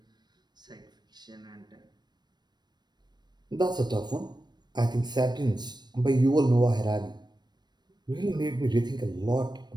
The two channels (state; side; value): late; left; 0.21 ms